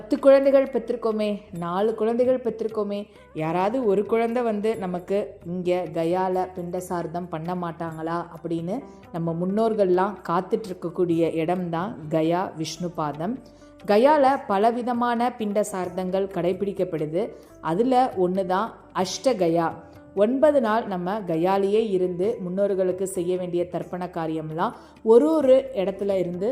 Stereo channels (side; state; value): both; identical; correlation 1.00